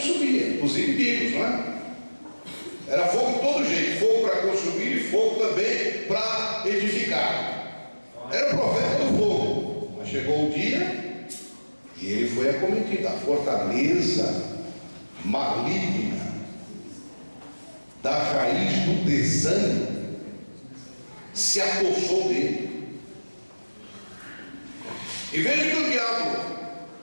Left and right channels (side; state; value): both; inverted; correlation -1.00